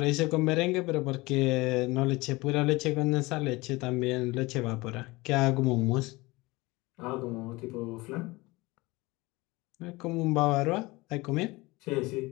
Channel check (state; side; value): quieter; right; 22.2 dB